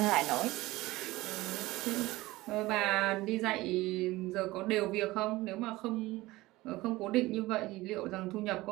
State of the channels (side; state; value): left; quieter; 19.0 dB